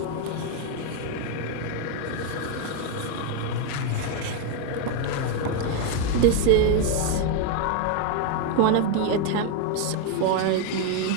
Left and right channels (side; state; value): both; different; correlation 0.01